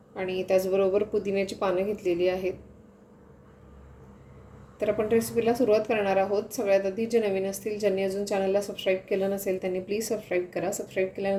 आणि त्याचबरोबर पुदिन्याची पानं घेतलेली आहेत. तर आपण रेसिपीला सुरुवात करणार आहोत. सगळ्यात आधी जे नवीन असतील, ज्यांनी अजून चॅनलला सबस्क्राईब केलं नसेल त्यांनी प्लीज सबस्क्राईब करा. सबस्क्राईब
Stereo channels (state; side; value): identical; both; correlation 1.00